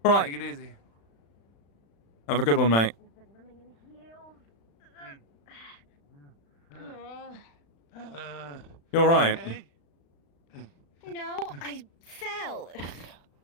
All right. Take it easy. Have a good one, mate. You all right? No, I fell.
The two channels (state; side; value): late; right; 35 ms